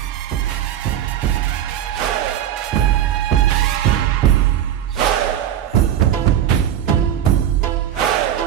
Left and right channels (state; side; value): quieter; left; 10.7 dB